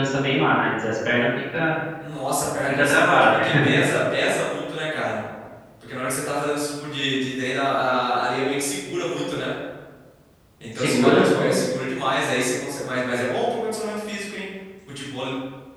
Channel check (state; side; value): identical; both; correlation 1.00